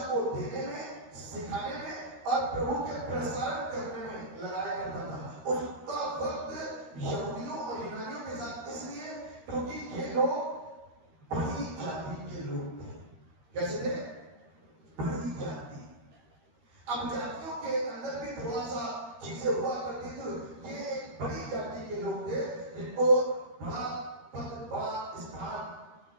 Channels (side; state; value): left; late; 13 ms